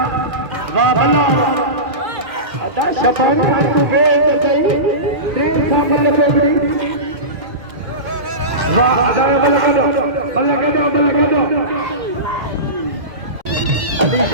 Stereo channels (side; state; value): left; late; 2.1 ms